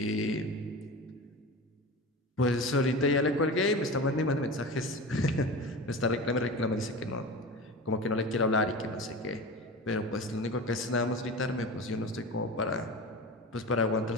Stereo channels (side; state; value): both; normal; correlation 0.30